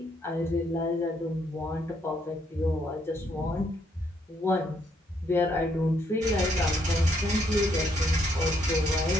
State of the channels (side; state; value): both; normal; correlation 0.72